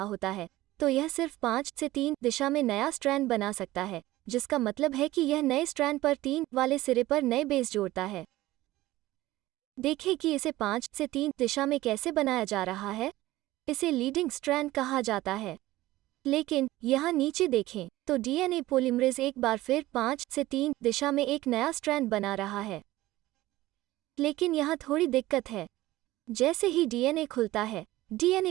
होता है तो यह सिर्फ 5 से 3 दिशा में नया स्ट्रैंड बना सकता है, जिसका मतलब है कि यह नए स्ट्रैंड पर 3 वाले सिरे पर नए बेस जोड़ता है। देखें कि इसे 5 से 3 दिशा में कैसे बनाया जा रहा है। इसे लीडिंग स्ट्रैंड कहा जाता है। लेकिन यहाँ नीचे देखें तो डीएनए पॉलीमरेज एक बार फिर 5 से 3 दिशा में एक नया स्ट्रैंड बना रहा है। लेकिन यहाँ थोड़ी दिक्कत है। जैसे ही डीएनए खुलता है,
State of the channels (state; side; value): quieter; left; 17.1 dB